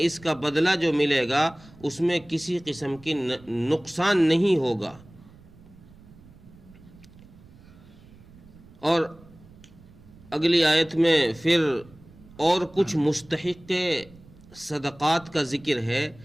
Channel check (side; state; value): right; noise; rumble, 23 dB below the sound